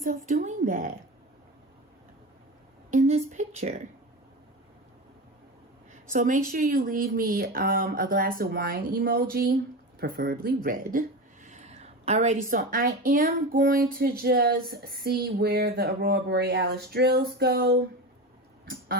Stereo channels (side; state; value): both; normal; correlation 0.25